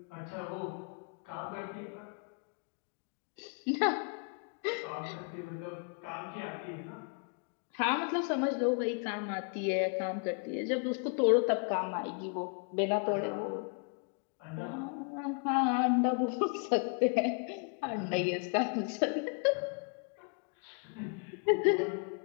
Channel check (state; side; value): quieter; right; 37.5 dB